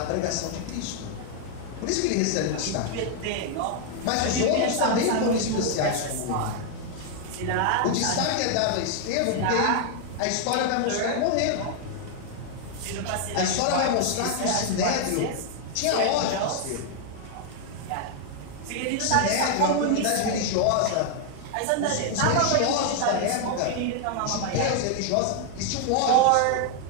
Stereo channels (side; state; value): both; different; correlation 0.00